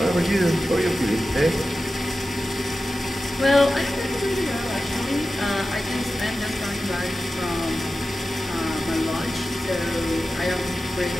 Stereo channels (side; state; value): both; normal; correlation 0.94